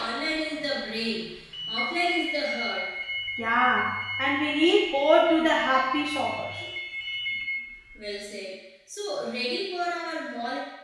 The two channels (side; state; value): both; identical; correlation 1.00